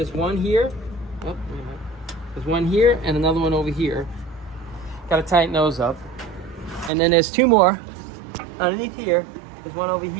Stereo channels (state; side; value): drops out; left; at 6.9 s